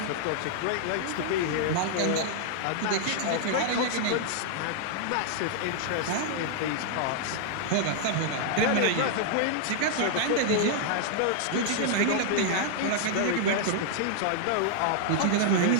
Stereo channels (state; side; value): different; both; correlation -0.01